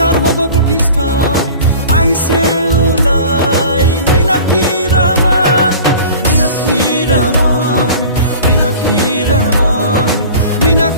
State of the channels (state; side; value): inverted; both; correlation -0.41